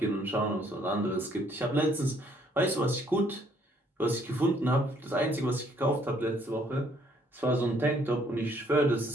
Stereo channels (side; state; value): both; normal; correlation 0.65